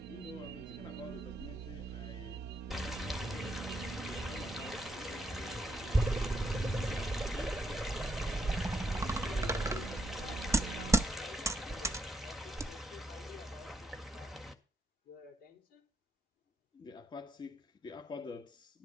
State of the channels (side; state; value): both; normal; correlation 0.78